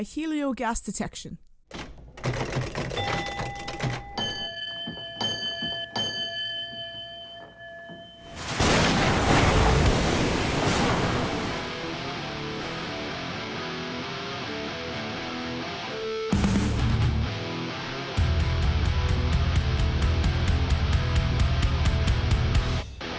Helio Gas Detection.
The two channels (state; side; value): identical; both; correlation 1.00